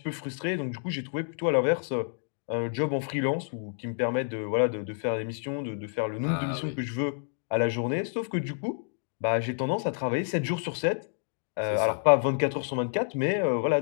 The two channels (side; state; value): right; silent; digital silence